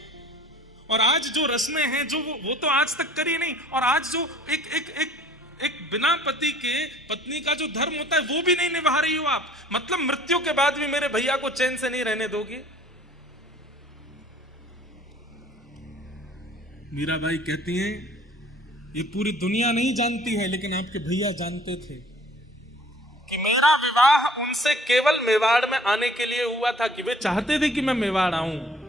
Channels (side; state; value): both; normal; correlation 0.53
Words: और आज जो रस्में हैं जो वो तो आज तक करी नहीं, और आज जो एक बिना पति के पत्नी का जो धर्म होता है वो भी नहीं निभा रही हो आप। मतलब मृत्यु के बाद भी मेरे भैया को चैन से नहीं रहने दोगी। मीराबाई कहती हैं, ये पूरी दुनिया नहीं जानती है लेकिन आपके भैया जानते थे कि मेरा विवाह उनसे केवल मेवाड़ में आने के लिए हुआ था, कि वे चाहते थे कि मैं मेवाड़ आऊं,